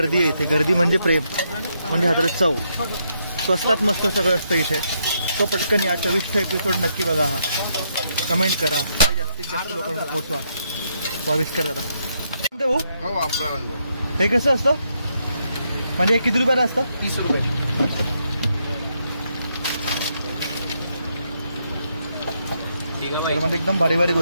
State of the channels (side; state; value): both; inverted; correlation -0.77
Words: आहे इथे। गर्दी म्हणजे प्रेम, म्हणजे हातात चव। स्वस्तात मस्त सगळं असतं इथे। तो पटकन या 24चा एपिसोड नक्की बघा, हा कमेंट करा आणि जास्तीत जास्त लोकांना पोहोचवा। 22 करा दादा। हो हे कसं असतं म्हणजे हे किती रुपयाला असतं? 30 रुपये। म्हणजे एकदम भारी भारी